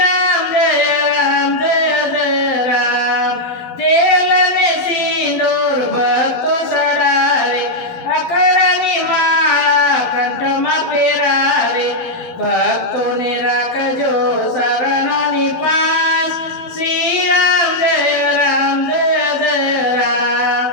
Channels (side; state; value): right; late; 12 ms